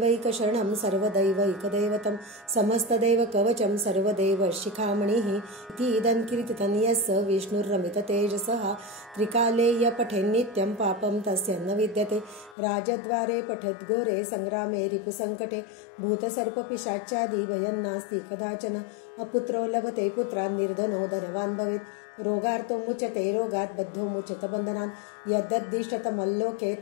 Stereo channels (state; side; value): drops out; right; at 12.6 s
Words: सर्वदैवैकदैवतं समस्तदैवकवचं सर्वदेव शिखामणिः इति इदं कीर्तितं यस्य विष्णुर्रमिततेजसः त्रिकाले य पठेन्नित्यं पापं पापं तस्य न विद्यते राजद्वारे पठद्घोरे संग्रामे रिपुसङ्कटे भूतसर्पपिशाचादि भयं नास्ति कदाचन अपुत्रो लभते पुत्रान् निर्धनो धनवान् भवेत् रोगार्तो मुच्यते रोगात् बद्धो मुच्यत बन्धनान् यद्दद्दिष्टतमल्लोके